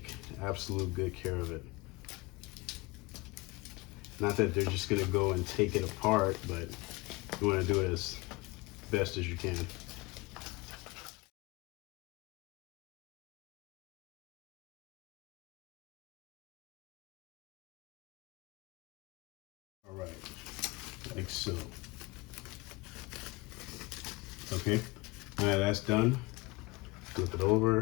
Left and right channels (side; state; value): right; quieter; 23.7 dB